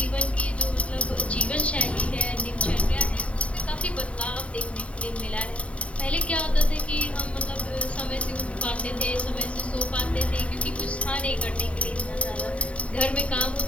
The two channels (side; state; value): right; late; 0.063 ms